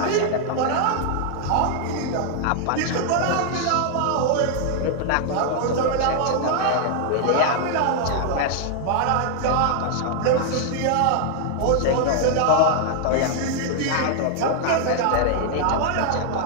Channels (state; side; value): different; both; correlation 0.00